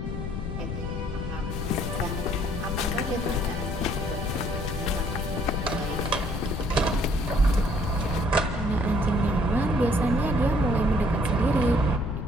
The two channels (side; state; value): left; noise; rumble, 4 dB below the sound